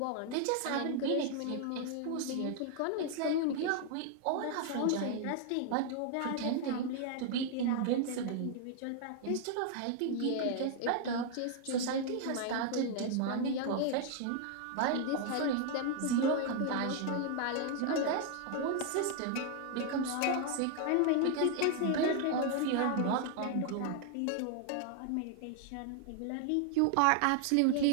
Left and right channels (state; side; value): different; both; correlation 0.00